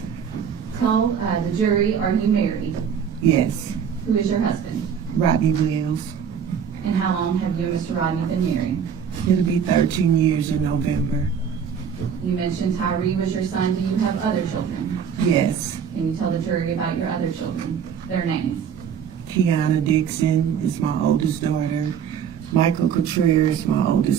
Tell the jury, are you married? yes. Who is your husband? Rodney Wells. And how long have you and Mr. Rodney been married? It'll be 13 years in November. You mentioned Tyre was your son. Do you have other children? Yes. Can you tell the jury about your other children, their names? Kiana Dixon is my oldest daughter. Michael Contreras is my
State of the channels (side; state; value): left; quieter; 7.6 dB